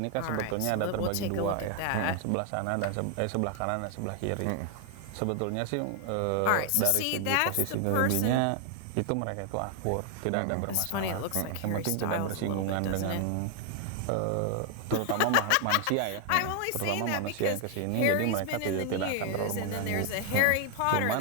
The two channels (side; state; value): both; different; correlation 0.00